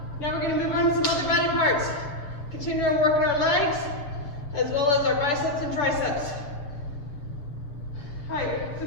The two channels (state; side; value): late; right; 6.9 ms